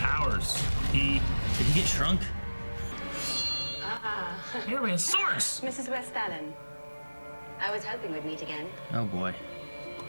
Did he get shrunk? Here we have swords. Mrs. West Allen. I was hoping we'd meet again. Oh boy.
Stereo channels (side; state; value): both; inverted; correlation -1.00